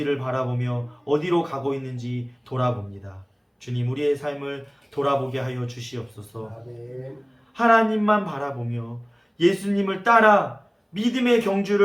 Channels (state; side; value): identical; both; correlation 1.00